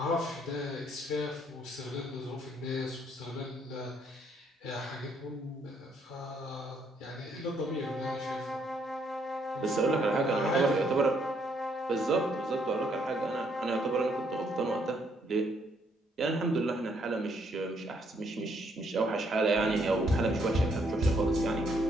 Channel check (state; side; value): normal; both; correlation 0.70